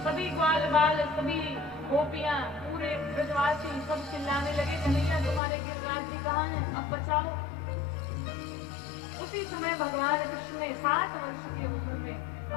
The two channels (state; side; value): drops out; right; at 5.4 s